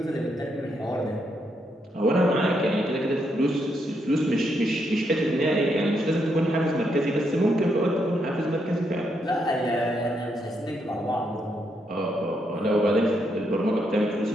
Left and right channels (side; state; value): both; normal; correlation 0.78